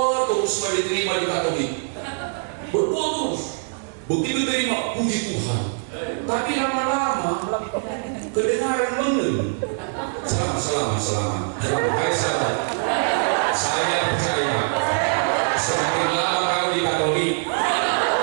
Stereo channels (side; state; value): left; silent; digital silence